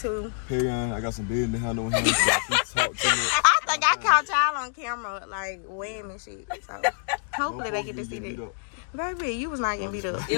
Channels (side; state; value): right; silent; digital silence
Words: Period. I got some business to handle with him. So he talk to me. I think I caught y'all on camera, like, weighing and shit. So, hopefully they get to see that. Baby, you was not getting beat up.